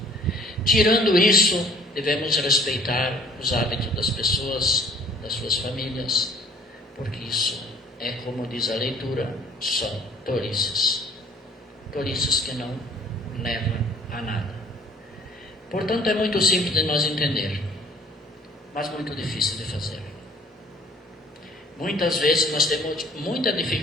Tirando isso, devemos respeitar os hábitos das pessoas, das suas famílias, porque isso é, como diz a leitura, são tolices. Tolices que não levam a nada. Portanto, é muito simples de nós entender, mas muito difícil de fazer. Muitas vezes nós temos muita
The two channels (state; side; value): normal; both; correlation 0.56